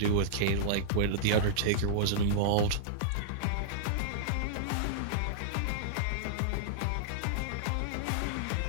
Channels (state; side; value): different; both; correlation -0.02